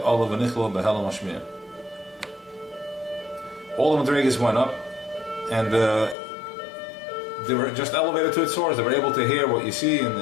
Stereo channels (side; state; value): right; drops out; at 6.2 s